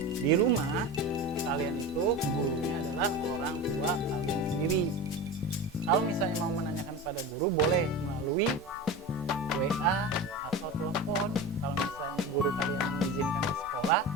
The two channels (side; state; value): both; normal; correlation 0.28